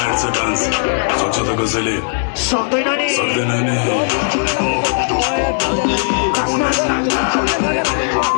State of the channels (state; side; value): silent; right; 68 dB below the other